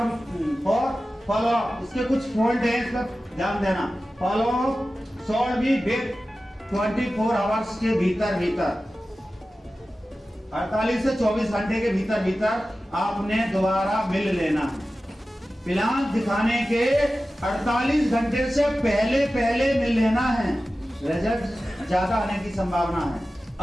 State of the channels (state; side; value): normal; both; correlation 0.95